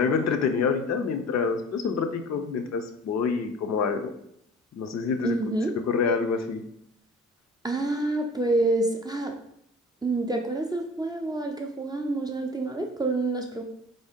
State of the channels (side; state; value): both; normal; correlation 0.42